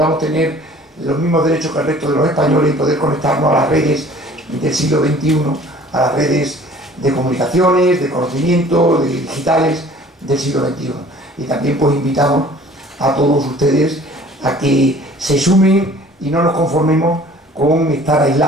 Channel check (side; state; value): both; normal; correlation 0.50